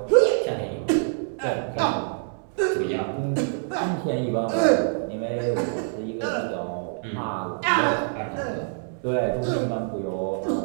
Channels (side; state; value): left; silent; 61 dB below the other